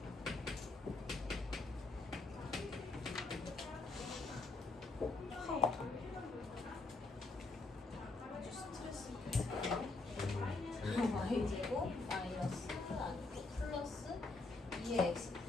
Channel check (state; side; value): quieter; right; 3.5 dB